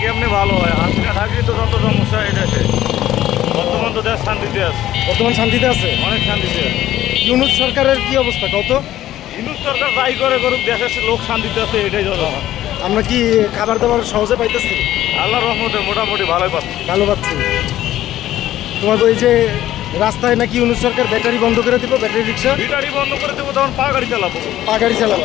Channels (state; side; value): quieter; right; 13.4 dB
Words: কেমনি ভালো হয়? হাসিনা থাকলে তো যত সমস্যা এই দেশে। বর্তমান তো দেশ শান্তিতে আছে, বর্তমান শান্তিতে আছে, অনেক শান্তিতে আছে। ইউনূস সরকারের কি অবস্থা কত? ইউনূস সরকার যাই করে করুক, দেশের লোক শান্তিতে আছে, এটাই যত। আমরা কি খাবার দাবার সহজে পাইতেছি? আল্লাহর রহমতে মোটামুটি ভালোই পাচ্ছি। ভালো পাচ্ছি। তোমার ওই যে রাস্তায় নাকি ইউনূস সরকার ব্যাটারি বন্ধ করে দিব, ব্যাটারি রিক্সা ব্যাটারি বন্ধ করে দেবো, তখন পা গাড়ি চালাবো। পা গাড়ি